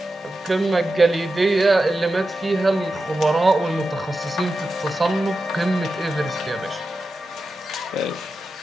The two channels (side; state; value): both; normal; correlation 0.91